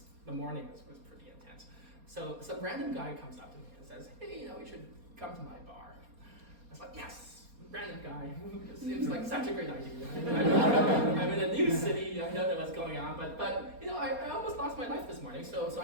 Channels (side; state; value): left; late; 4.3 ms